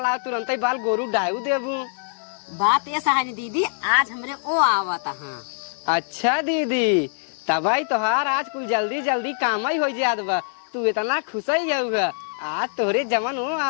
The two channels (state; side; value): silent; right; digital silence